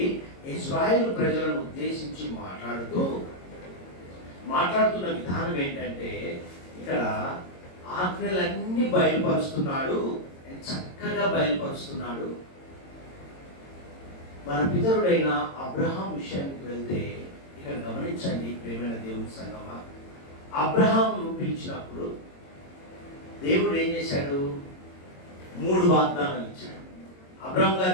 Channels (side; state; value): right; late; 22 ms